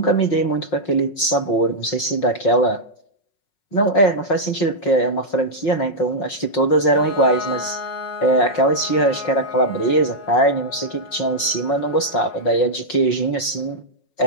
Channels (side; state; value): right; late; 5.5 ms